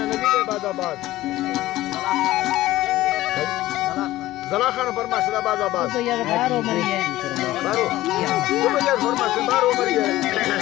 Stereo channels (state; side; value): quieter; right; 16.2 dB